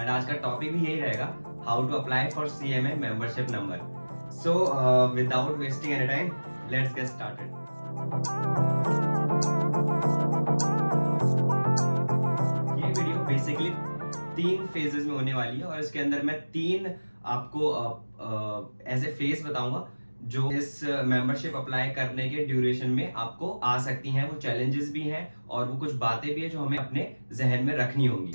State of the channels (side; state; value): both; inverted; correlation -1.00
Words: आज का टॉपिक भी यही रहेगा, how to apply for CMA membership number. So without wasting any time, let's get started. ये वीडियो बेसिकली 3 फेजेस में होने वाली है और इसके अंदर मैं 3 आपको एज ए फेज बताऊंगा जो इस मेंबरशिप अप्लाई करने के ड्यूरेशन में आपको आ सकती हैं। वो चैलेंजेस भी हैं और वो कुछ बातें भी है जो हमें अपने जहन में रखनी होंगी।